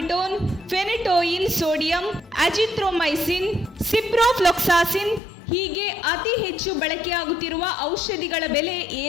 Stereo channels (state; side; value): drops out; right; at 5.2 s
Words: ಫೆನಿಟೋಯಿನ್ ಸೋಡಿಯಂ, ಅಜಿಥ್ರೊಮೈಸಿನ್, ಸಿಪ್ರೋಫ್ಲೋಕ್ಸಾಸಿನ್ ಹೀಗೆ ಅತಿ ಹೆಚ್ಚು ಬಳಕೆಯಾಗುತ್ತಿರುವ ಔಷಧಿಗಳ ಬೆಲೆ